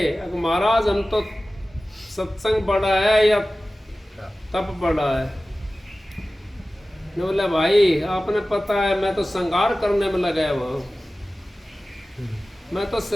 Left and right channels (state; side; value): normal; both; correlation 0.96